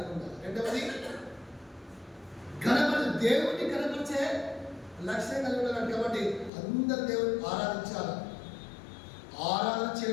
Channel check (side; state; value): right; drops out; at 6.5 s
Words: ఉండాలి. రెండవది దేవుడిని కనపరిచే లక్ష్యం కలిగి ఉండాలి. కాబట్టి అందరు దేవుడిని ఆరాధించాలి. ఆరాధన